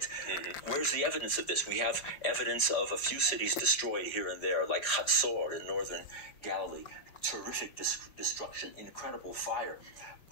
Where's the evidence of this? We have evidence of a few cities destroyed here and there, like Hatzor in northern Galilee. Terrific destruction, incredible fire.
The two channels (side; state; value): right; late; 5.1 ms